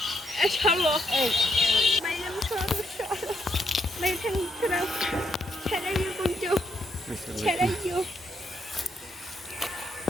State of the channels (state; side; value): normal; both; correlation 0.76